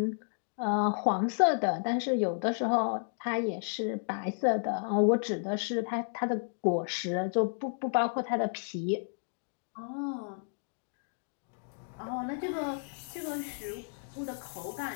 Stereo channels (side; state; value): right; silent; digital silence